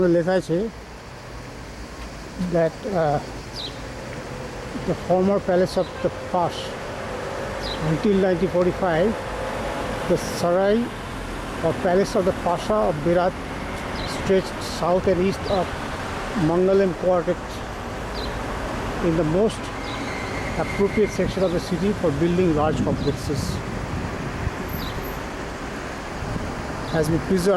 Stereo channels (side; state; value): both; identical; correlation 1.00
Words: লেখা আছে that the former palace of the Pash. Until 1945, the Sarai or palace of the Pasha of Berat stretched south and east of Mangalem quarter in the most appropriate section of the city for building large complexes. Has been